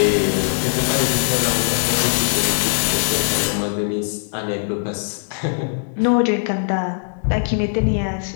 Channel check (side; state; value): right; silent; digital silence